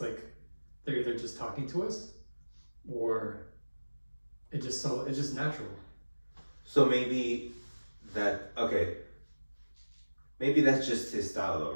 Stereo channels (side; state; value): both; inverted; correlation -1.00